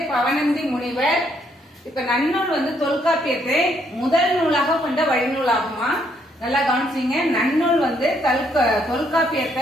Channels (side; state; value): both; normal; correlation 0.71